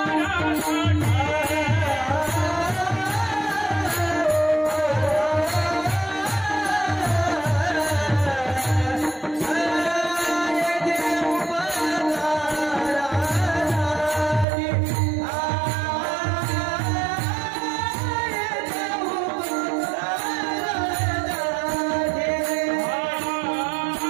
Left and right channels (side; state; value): left; drops out; at 14.5 s